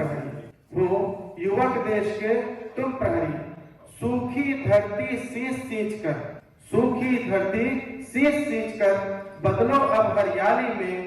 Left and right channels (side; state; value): both; identical; correlation 1.00